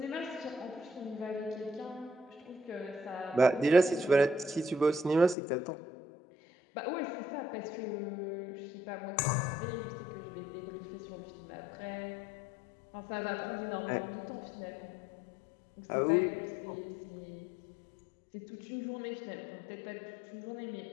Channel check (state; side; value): drops out; right; at 5.4 s